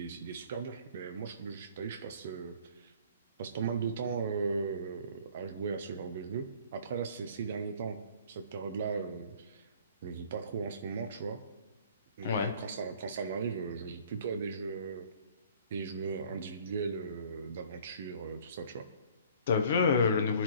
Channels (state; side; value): inverted; both; correlation -0.53